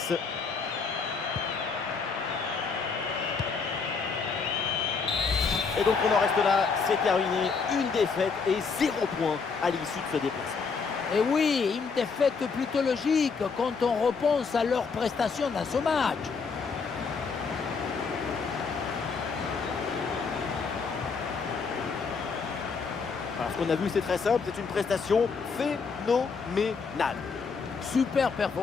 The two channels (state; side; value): quieter; right; 5.1 dB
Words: Et donc on en reste là, c'est terminé. Une défaite et 0 points à l'issue de ce déplacement. Et oui, une défaite plutôt logique quand on repense à leur prestation dans ce match. Alors, ce qu'on a vu, c'est très simple, c'est une prestation phénoménale. Super